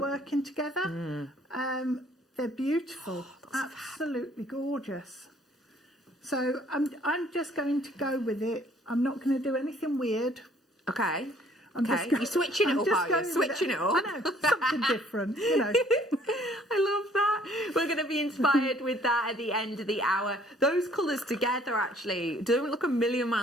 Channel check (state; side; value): normal; both; correlation 0.60